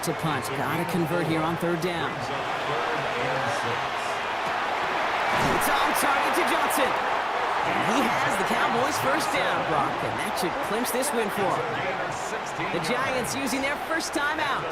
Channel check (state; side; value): identical; both; correlation 1.00